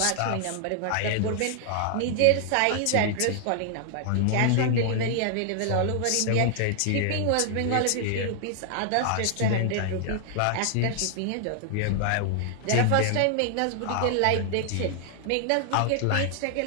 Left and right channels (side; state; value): both; different; correlation 0.00